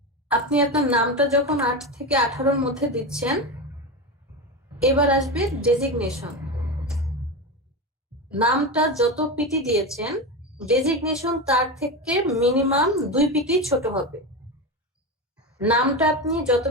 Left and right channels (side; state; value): both; normal; correlation 0.19